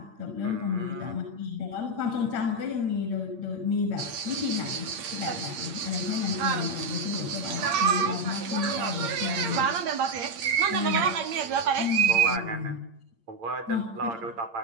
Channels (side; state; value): left; late; 8.7 ms